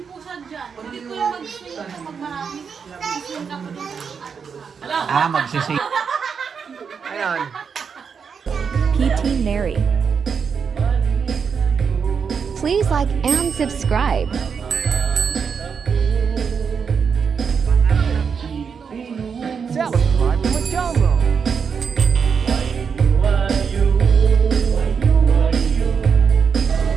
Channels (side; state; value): left; quieter; 6.3 dB